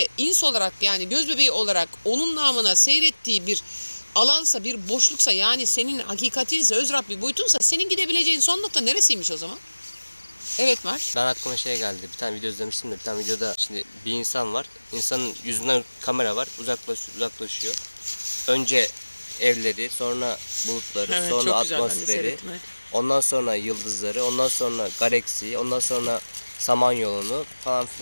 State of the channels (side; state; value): both; inverted; correlation -1.00